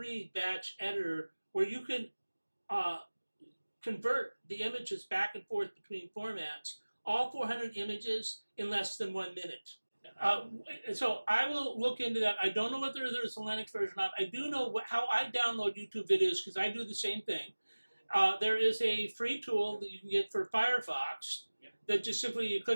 batch editor, where you can convert the images back and forth between formats, all 400 images in less than 1 minute. So I will look into that. I don't know whether there's a Linux version or not. I do know how I download YouTube videos because I do the same thing. There is a free tool that you can get for Firefox that just simply you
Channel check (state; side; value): inverted; both; correlation -1.00